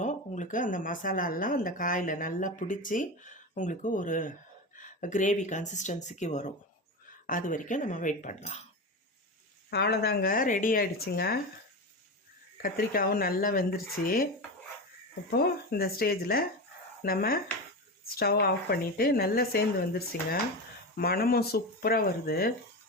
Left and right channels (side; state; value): both; normal; correlation 0.21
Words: உங்களுக்கு அந்த மசாலாலாம் அந்த காயில் நல்லா பிடிச்சி உங்களுக்கு ஒரு கிரேவி கன்சிஸ்டன்சிக்கு வரும். அது வரைக்கும் நம்ம வெயிட் பண்ணலாம். அவ்வளோதாங்க, ரெடி ஆகிடுச்சுங்க. கத்திரிக்காயும் நல்லா வெந்துருச்சு. இப்போது இந்த ஸ்டேஜில் நம்ம ஸ்டவ் ஆஃப் பண்ணிவிட்டு நல்லா சேர்ந்து வந்துருச்சுங்க. மணமும் சூப்பராக வருது.